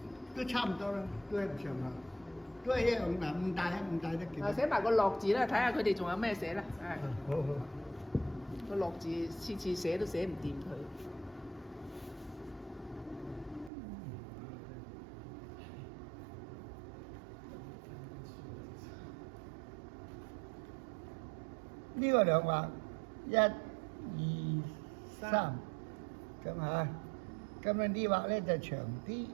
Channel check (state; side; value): drops out; left; at 13.7 s